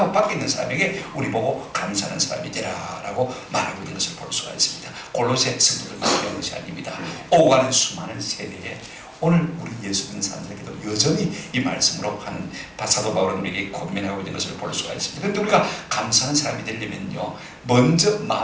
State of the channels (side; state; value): both; identical; correlation 1.00